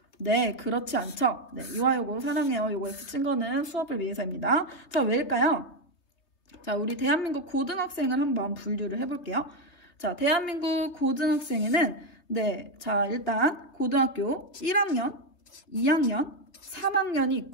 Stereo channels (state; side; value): late; right; 3.2 ms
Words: 네, 그렇지 않죠. 네, 이화여고 사랑해요. 요거에 붙인 거는 수업을 위해서입니다. 자, 왜일까요? 자, 우리 대한민국 고등학생을 한번 분류를 해볼게요. 자, 대한민국 고등학생에는 네, 자, 일단 고등학교 1학년 2학년, 3학년이